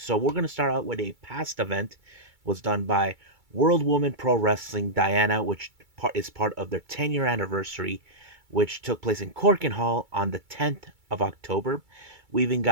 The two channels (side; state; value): left; late; 2.3 ms